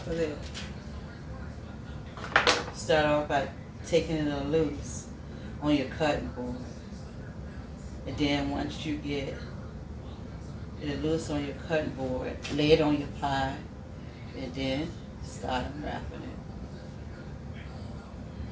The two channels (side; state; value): both; identical; correlation 1.00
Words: of there. Start off by taking it loose. on your cutting board. And then once you get it loose on your cutting board, lay it on your pie, and then start unwrapping it.